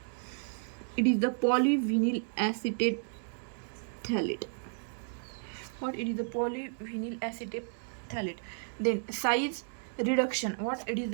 it is the polyvinyl acetate phthalate. what? It is the polyvinyl acetate phthalate. Then size reduction. What? It is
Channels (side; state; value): left; silent; 56 dB below the other